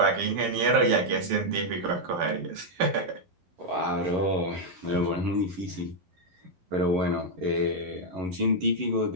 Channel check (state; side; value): late; left; 12 ms